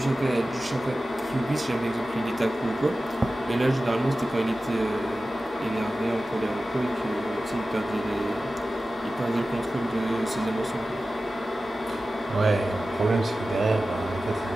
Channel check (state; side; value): normal; both; correlation 0.95